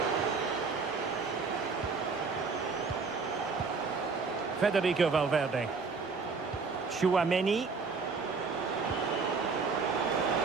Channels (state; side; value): quieter; left; 4.7 dB